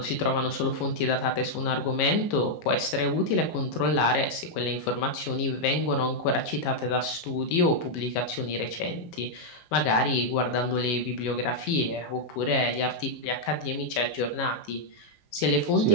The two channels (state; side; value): late; right; 18 ms